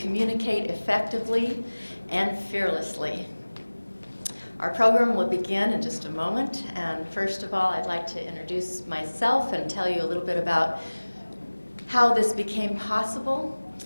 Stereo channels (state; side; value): inverted; both; correlation -1.00